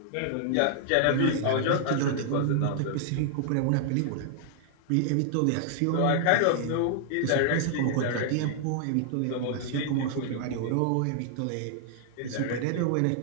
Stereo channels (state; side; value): different; both; correlation -0.01